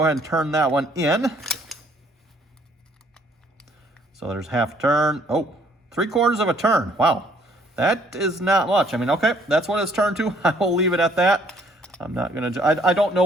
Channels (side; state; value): both; normal; correlation 0.62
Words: ahead and turn that one in. So there's half a turn. Oh, 3/4 of a turn. Wow. That is not much. I mean, okay, that's what it's turned to. I will leave it at that. I'm not going to, I don't know